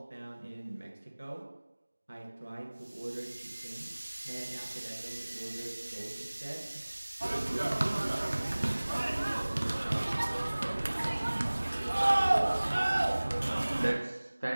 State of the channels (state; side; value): inverted; both; correlation -1.00